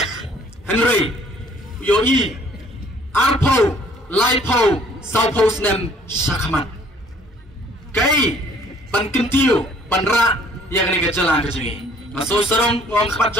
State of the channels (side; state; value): both; normal; correlation 0.58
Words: Henry yo i arpo laipo saupo snem shakaman kai ban kentiu ban ra ya kani gajala kajungi maso sarong ngom khabat